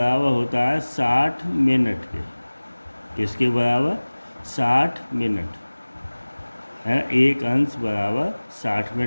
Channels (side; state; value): both; inverted; correlation -1.00